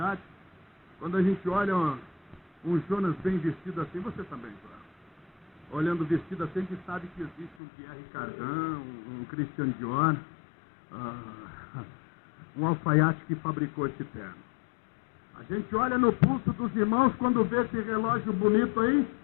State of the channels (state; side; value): drops out; right; at 7.6 s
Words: quando a gente olha um Jonas bem vestido assim, você também, claro. Olhando vestido assim, a gente sabe que existe um Pierre Cardin, um Christian Dior, um alfaiate que fabricou esse terno. A gente olha no pulso dos irmãos, quando vê esse relógio bonito aí,